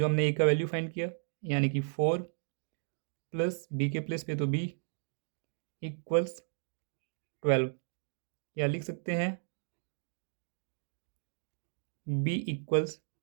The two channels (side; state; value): left; silent; digital silence